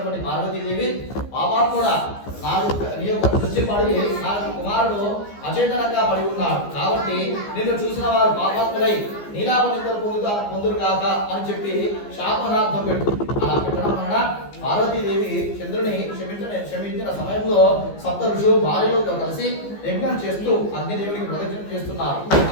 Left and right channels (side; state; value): right; late; 15 ms